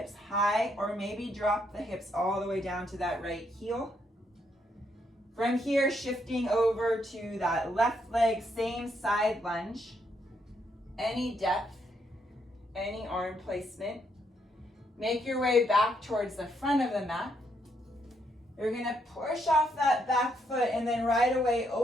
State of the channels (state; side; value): normal; both; correlation 0.75